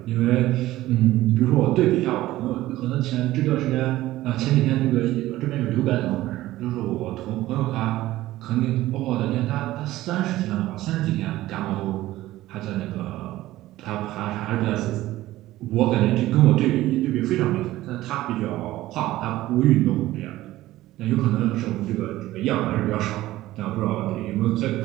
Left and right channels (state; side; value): quieter; left; 16.0 dB